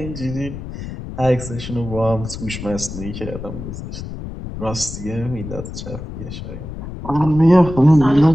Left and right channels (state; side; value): noise; left; rumble, 9 dB below the sound